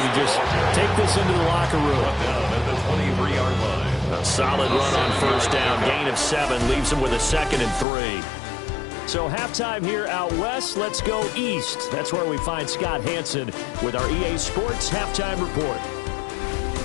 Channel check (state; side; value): drops out; right; at 7.9 s